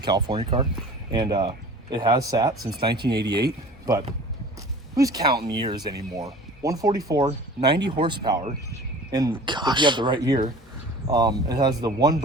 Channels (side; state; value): both; normal; correlation 0.42